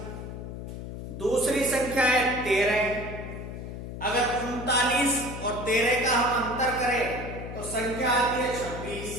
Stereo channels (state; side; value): noise; left; hum, 8 dB below the sound